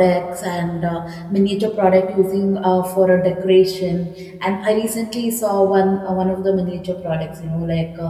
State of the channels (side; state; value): both; identical; correlation 1.00